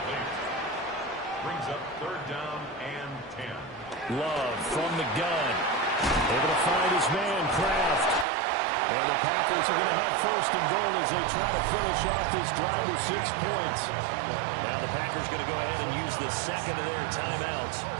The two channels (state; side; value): drops out; left; at 8.2 s